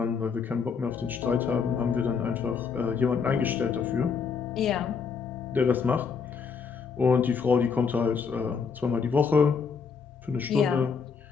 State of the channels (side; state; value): right; quieter; 5.7 dB